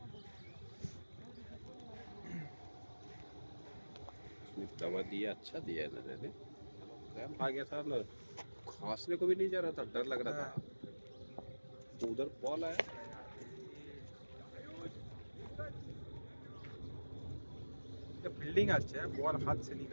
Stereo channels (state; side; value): inverted; both; correlation -1.00